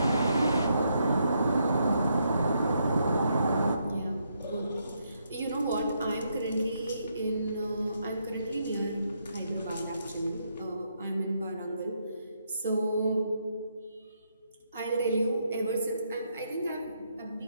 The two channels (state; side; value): inverted; both; correlation -0.77